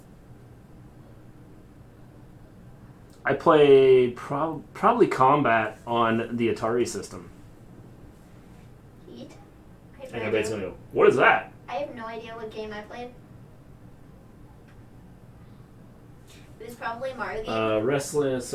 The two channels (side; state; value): both; identical; correlation 1.00